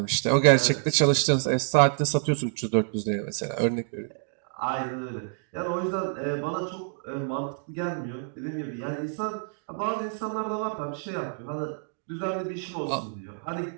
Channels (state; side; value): silent; left; digital silence